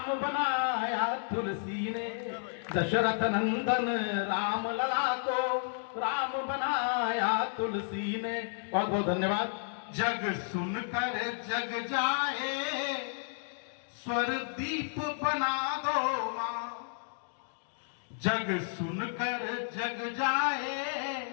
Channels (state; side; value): silent; right; digital silence